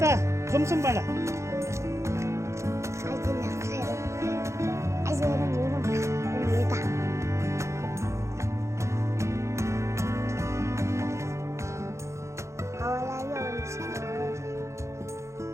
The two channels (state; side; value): late; left; 0.14 ms